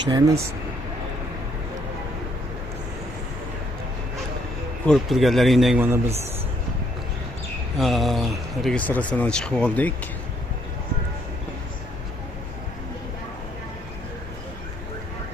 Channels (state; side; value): normal; both; correlation 0.69